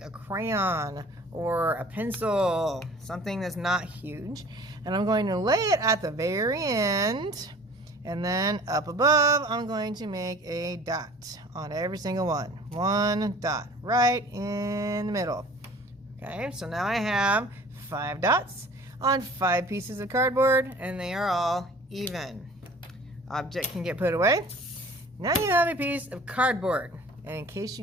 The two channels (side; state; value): both; normal; correlation 0.47